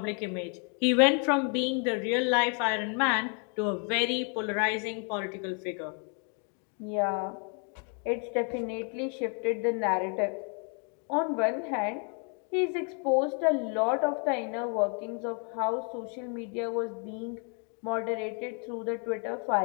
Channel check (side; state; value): right; quieter; 39.7 dB